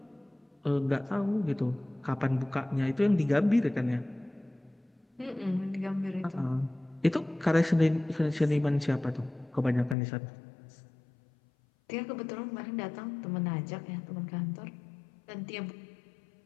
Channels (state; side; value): drops out; right; at 10.0 s